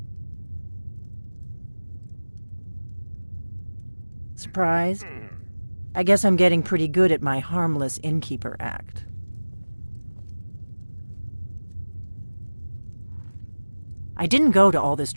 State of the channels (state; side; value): inverted; both; correlation -1.00